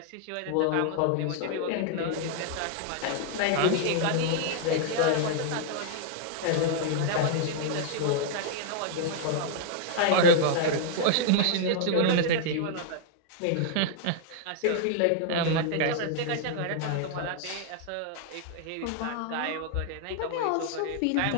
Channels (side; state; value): both; different; correlation -0.01